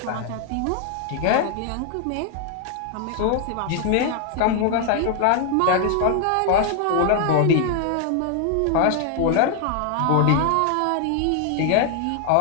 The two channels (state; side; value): different; both; correlation 0.00